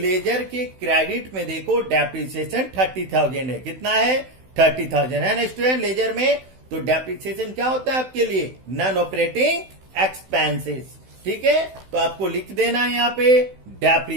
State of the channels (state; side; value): late; left; 16 ms